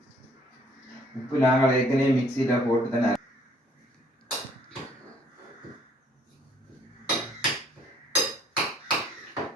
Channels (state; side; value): normal; both; correlation 0.61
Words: உப்பு நாங்கள் ஏற்கனவே மிக்சியில் போட்டு தானே.